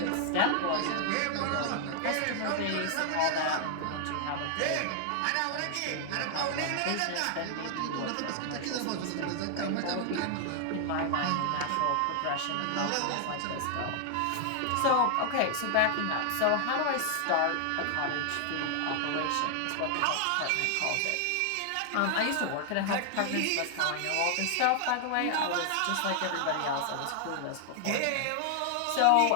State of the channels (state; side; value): different; both; correlation 0.00